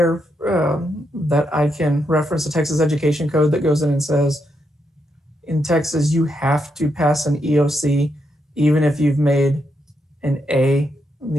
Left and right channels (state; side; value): normal; both; correlation 0.81